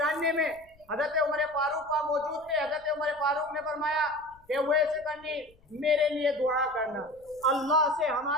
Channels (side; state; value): left; noise; rumble, 29 dB below the sound